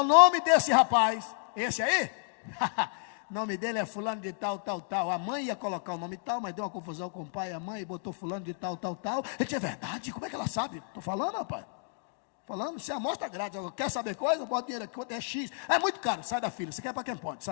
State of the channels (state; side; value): silent; right; digital silence